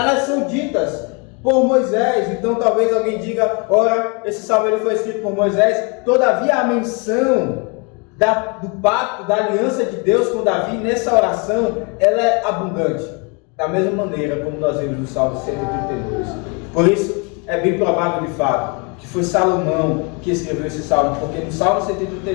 são ditas por Moisés. Então talvez alguém diga, ora, esse salmo ele foi escrito por Moisés. Todavia a menção do pacto, da aliança de Deus com Davi nessa oração, ela é abundante, da mesma maneira como nós vemos no Salmo 132. Por isso é bem provável de fato que foi Salomão que escreveu esse salmo, porque no Salmo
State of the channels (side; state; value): right; quieter; 32.8 dB